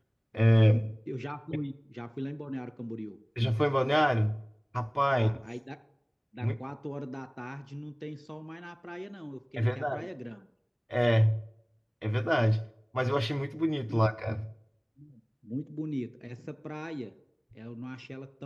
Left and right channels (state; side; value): identical; both; correlation 1.00